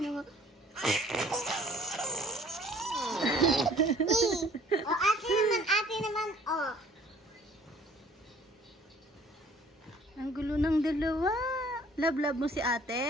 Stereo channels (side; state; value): both; normal; correlation 0.55